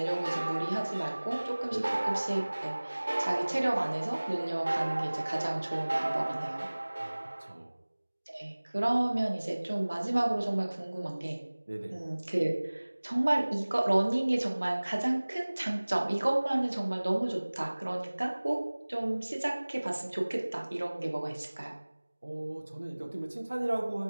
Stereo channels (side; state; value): both; inverted; correlation -1.00